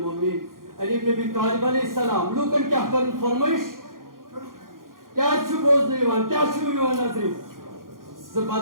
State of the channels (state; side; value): late; left; 0.91 ms